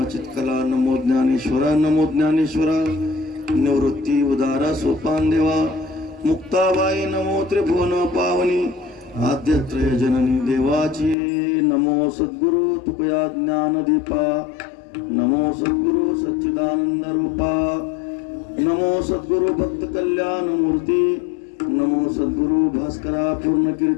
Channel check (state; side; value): drops out; right; at 11.2 s